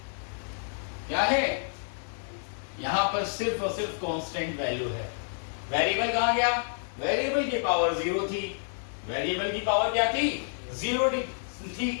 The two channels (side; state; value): right; silent; digital silence